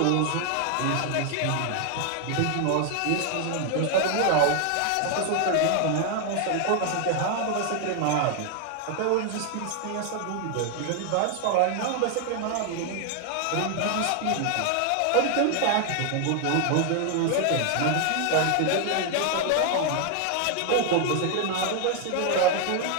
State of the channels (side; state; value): both; different; correlation 0.00